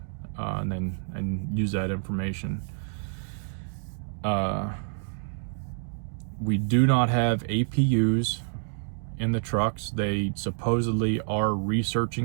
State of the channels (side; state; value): left; silent; digital silence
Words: and use that information. We do not have APUs in the trucks. They supposedly are